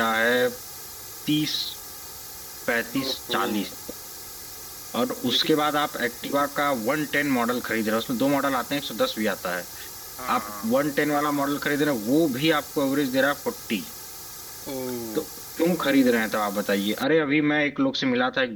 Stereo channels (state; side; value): identical; both; correlation 1.00